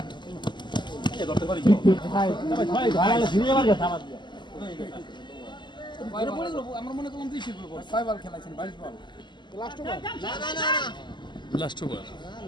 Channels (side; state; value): right; late; 0.22 ms